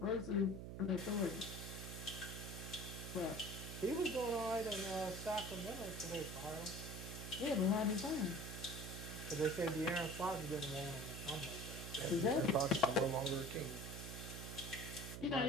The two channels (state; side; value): noise; right; hum, 7 dB below the sound